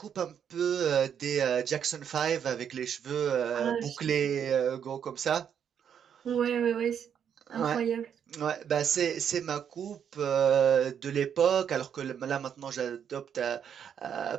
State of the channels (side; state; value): left; quieter; 8.3 dB